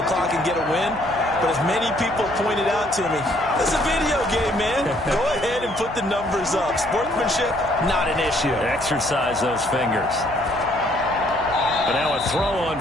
clock and get a win. But as many people pointed out to me, it's a video game, man. Go ahead and put the numbers up. Sportsmanship, not an issue. Exercise those fingers. And now a throw on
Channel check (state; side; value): noise; right; hum, 16 dB below the sound